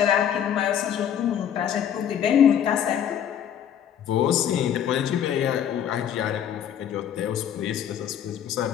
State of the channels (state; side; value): quieter; right; 9.4 dB